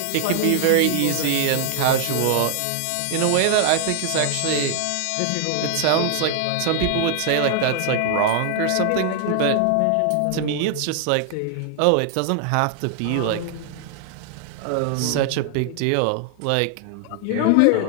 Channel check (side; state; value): both; different; correlation 0.00